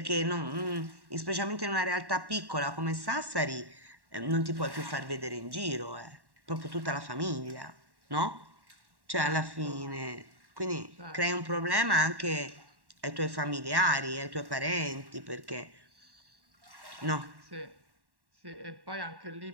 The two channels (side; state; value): left; late; 1.1 ms